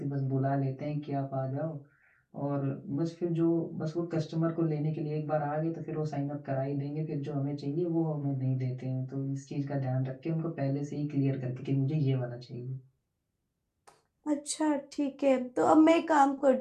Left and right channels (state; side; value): identical; both; correlation 1.00